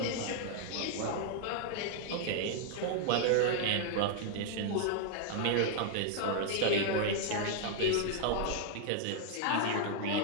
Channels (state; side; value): different; both; correlation 0.00